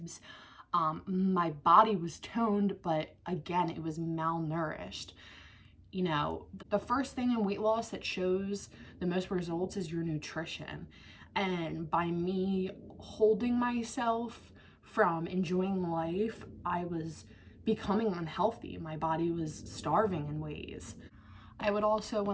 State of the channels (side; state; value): both; identical; correlation 1.00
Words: My body was toned, but again, it was malnourished. The first thing in weight loss that shows the most results is your nutrition. And by me holding myself from enjoying life, I was becoming unhealthy. My body was starving in ways. I would also,